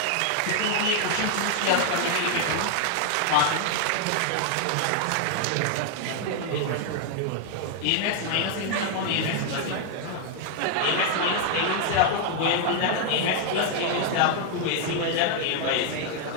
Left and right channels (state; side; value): different; both; correlation 0.00